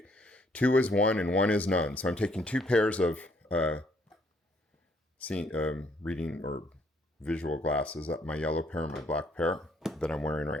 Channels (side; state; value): both; normal; correlation 0.66